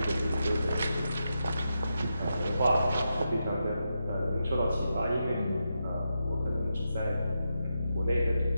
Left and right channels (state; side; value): inverted; both; correlation -0.86